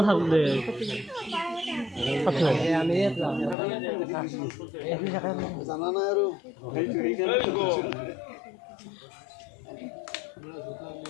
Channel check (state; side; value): drops out; right; at 3.6 s